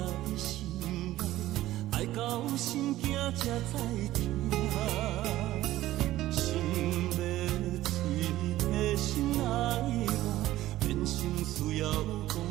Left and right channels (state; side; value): quieter; left; 15.2 dB